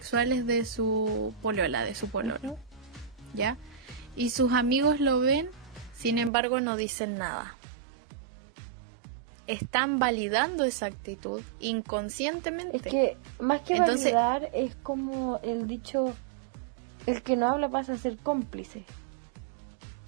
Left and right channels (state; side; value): drops out; left; at 6.3 s